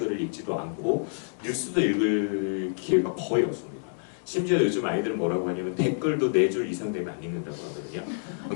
읽지도 않고 뉴스도 읽을 기회가 거의 없습니다. 심지어 요즘 아이들은 뭐라고 하냐면 댓글도 4줄 이상 되면 안 읽는다고 하거든요.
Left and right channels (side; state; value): right; silent; digital silence